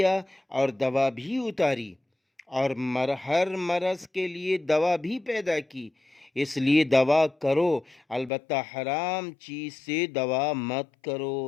اور دوا بھی اتاری، اور ہر مرض کے لیے دوا بھی پیدا کی، اس لیے دوا کرو، البتہ حرام چیز سے دوا مت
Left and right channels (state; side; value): drops out; right; at 8.3 s